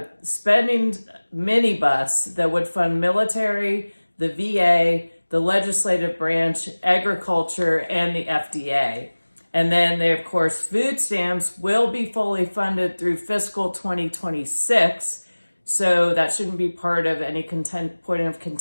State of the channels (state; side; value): inverted; both; correlation -1.00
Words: spending minibus that would fund military, the VA, the legislative branch, agriculture, and the FDA. And then of course, food stamps will be fully funded through fiscal 2026. So that shouldn't be part of any point of